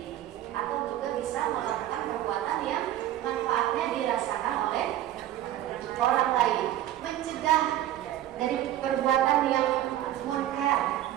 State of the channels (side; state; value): left; quieter; 13.0 dB